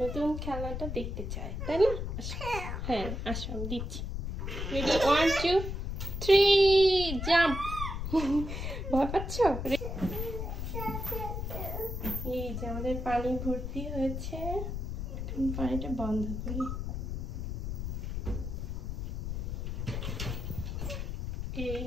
নতুন খেলনাটা দেখতে চায়, তাই না? হ্যাঁ আসো, আমি দিচ্ছি। রেডি, 1 2 3 জাম্প। ভয় পাচ্ছ? এই যে আমাদের পানি ভর্তি হয়েছে, এখন পানিটা বন্ধ করি। এই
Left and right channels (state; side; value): noise; left; rumble, 4 dB below the sound